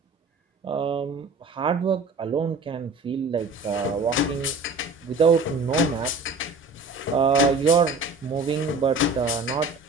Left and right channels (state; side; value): quieter; left; 3.4 dB